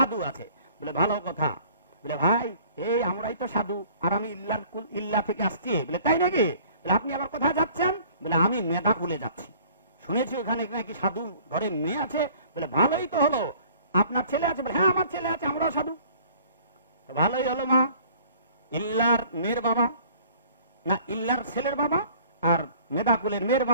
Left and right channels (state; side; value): inverted; both; correlation -0.52